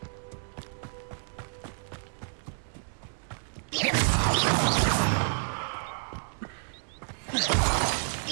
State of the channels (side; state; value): left; silent; digital silence